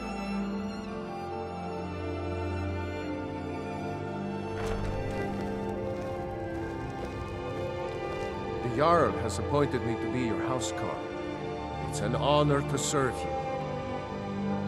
The Jarl has appointed me to be your housecarl. It's an honor to serve you.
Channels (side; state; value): both; identical; correlation 1.00